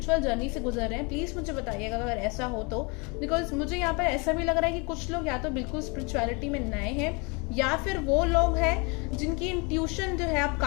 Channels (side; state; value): right; quieter; 30.5 dB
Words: जर्नी से गुजर रहे हैं। प्लीज मुझे बताइएगा अगर ऐसा हो तो, बिकॉज मुझे यहाँ पर ऐसा भी लग रहा है कि कुछ लोग या तो बिल्कुल स्पिरिचुअलिटी में नए हैं, या फिर वो लोग हैं जिनकी इंट्यूशन जो है अब